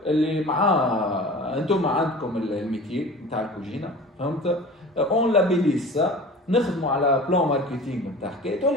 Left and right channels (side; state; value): both; normal; correlation 0.39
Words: اللي معاه انتم عندكم الميتير نتاع الكوجينة، فهمت؟ اون لابيليز سا، نخدموا على بلان ماركتينغ نتاع حكايه